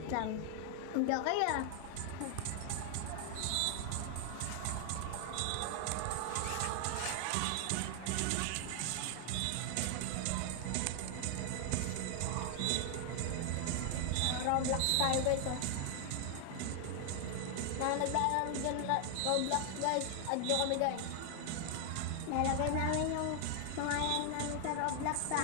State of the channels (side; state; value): both; different; correlation 0.00